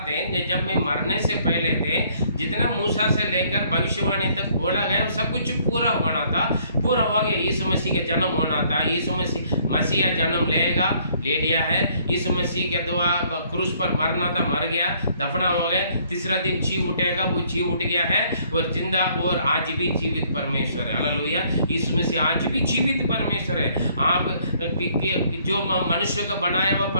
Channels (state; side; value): inverted; both; correlation -0.64